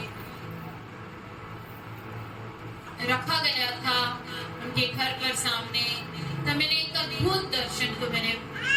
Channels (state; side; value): identical; both; correlation 1.00